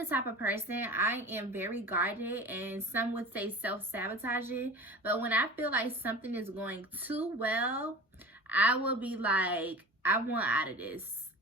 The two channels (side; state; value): both; normal; correlation 0.36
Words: type of person, I am very guarded, and some would say self-sabotaging. But when I feel like something is going too well, I will be like, I want out of this.